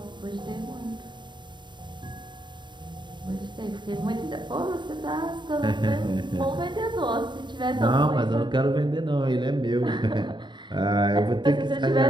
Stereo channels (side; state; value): left; late; 0.22 ms